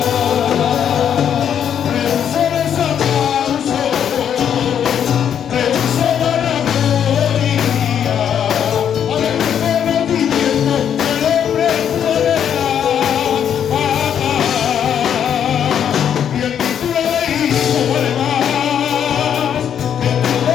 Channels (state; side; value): quieter; right; 8.8 dB